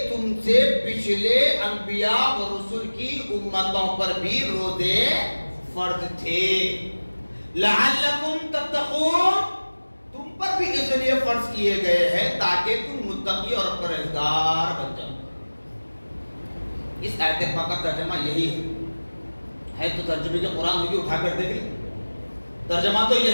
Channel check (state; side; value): inverted; both; correlation -1.00